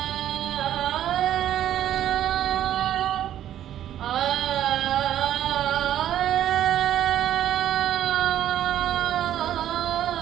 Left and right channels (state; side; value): quieter; left; 11.5 dB